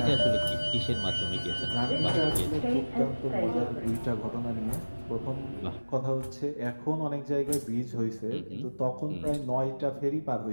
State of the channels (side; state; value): both; inverted; correlation -1.00